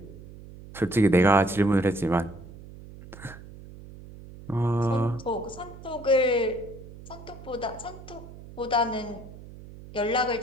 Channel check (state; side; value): noise; right; hum, 16 dB below the sound